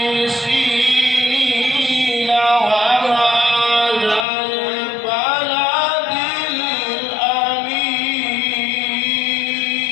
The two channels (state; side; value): drops out; right; at 4.2 s